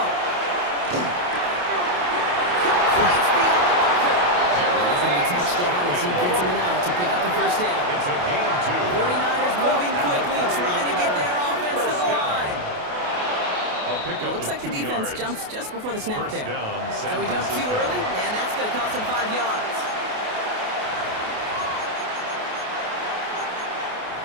Complete beyond the marker. And he's going to be touchdown as he gets him an out to pick up the first down. It's a gain of 2. 49ers moving quickly, trying to get their offense to the line. It looks like the defense jumps just before the snap there. So he jumped too early, and that's going to cost him 5 yards.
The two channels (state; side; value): late; left; 28 ms